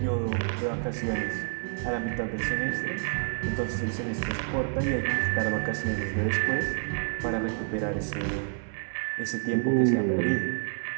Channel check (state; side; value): silent; left; 59 dB below the other